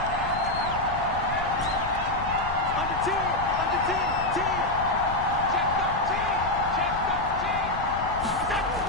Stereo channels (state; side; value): noise; left; rumble, 10 dB below the sound